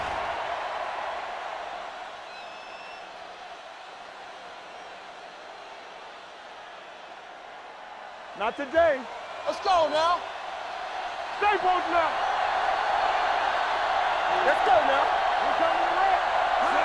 Not today. Let's go now. Stay posted now. Let's go now. We're coming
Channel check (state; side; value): identical; both; correlation 1.00